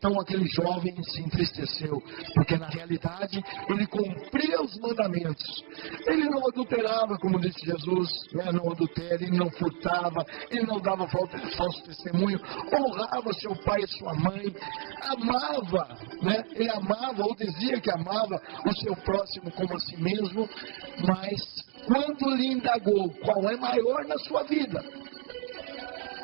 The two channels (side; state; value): left; quieter; 39.5 dB